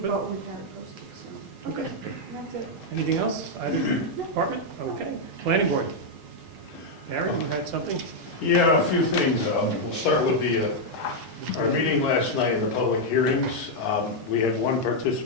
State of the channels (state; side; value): normal; both; correlation -0.02